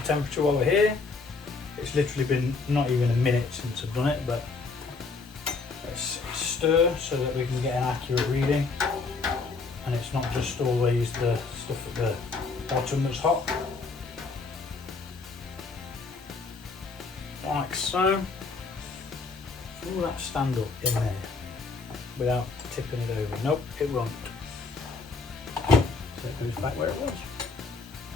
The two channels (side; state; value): right; quieter; 4.3 dB